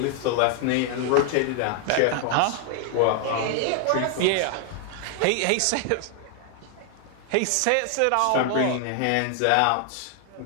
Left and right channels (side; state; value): both; different; correlation 0.00